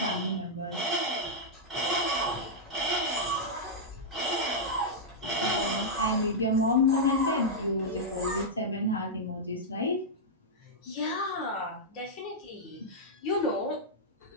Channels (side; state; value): both; normal; correlation -0.07